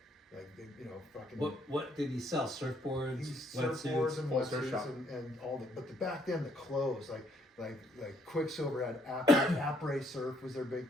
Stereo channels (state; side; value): normal; both; correlation 0.68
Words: Like they, fucking. What did he sell? Surfboards, Surfboards wetsuits. and Full surf wetsuits shop. and all that. But back then the clothes, like Quicksilver had après surf was their big